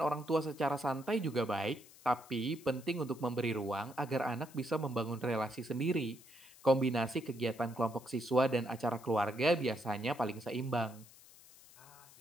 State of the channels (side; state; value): left; noise; hiss, 22 dB below the sound